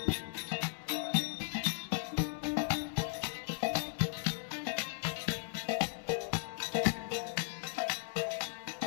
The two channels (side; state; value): right; silent; digital silence